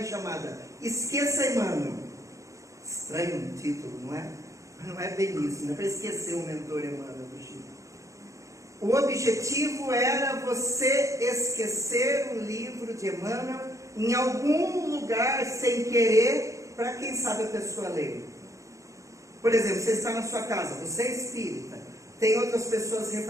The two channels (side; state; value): left; late; 0.15 ms